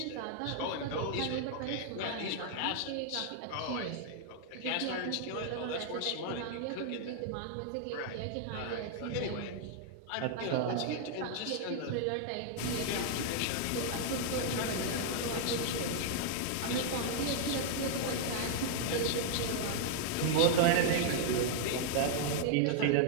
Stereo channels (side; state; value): both; different; correlation -0.01